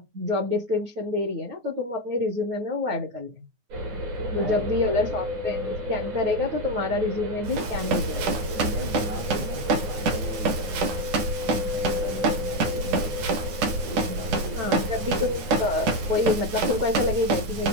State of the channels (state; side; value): late; left; 9.6 ms